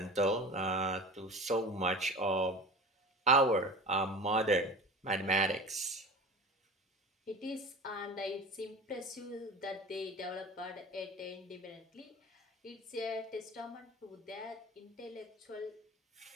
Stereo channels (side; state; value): both; normal; correlation 0.34